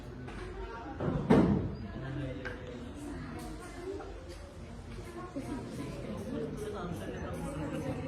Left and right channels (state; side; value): identical; both; correlation 1.00